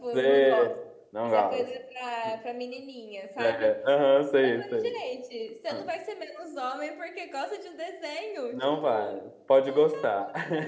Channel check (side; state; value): both; identical; correlation 1.00